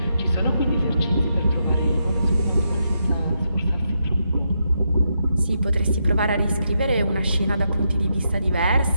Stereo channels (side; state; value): both; inverted; correlation -0.82